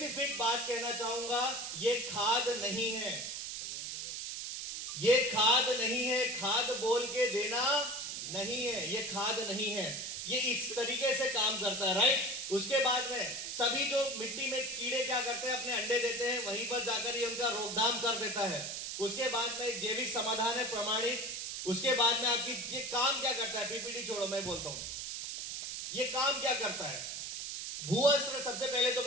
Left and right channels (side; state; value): right; noise; hiss, 5 dB below the sound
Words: बात कहना चाहूंगा, ये खाद नहीं है, ये खाद नहीं है, खाद बोल के देना नहीं है, ये खाद नहीं है, ये इस तरीके से काम करता है, राइट। उसके बाद में सभी जो मिट्टी में कीड़े क्या करते हैं, अपने अंडे देते हैं, वहीं पर जाकर ये उनका रोकथाम कर देता है। उसके बाद में एक जैविक समाधान है प्रमाणित। उसके बाद में आपकी ये काम क्या करता है, पीपीटी छोड़ो मैं बोलता हूं, ये काम क्या करता है भूअस्त्र। सबसे पहले तो